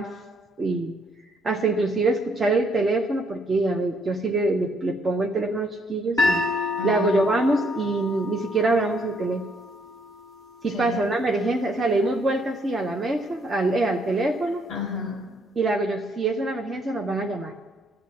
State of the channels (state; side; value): normal; both; correlation 0.69